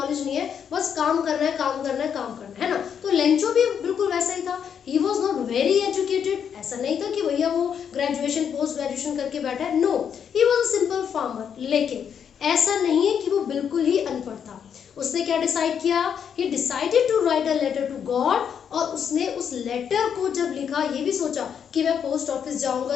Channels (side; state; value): right; quieter; 7.8 dB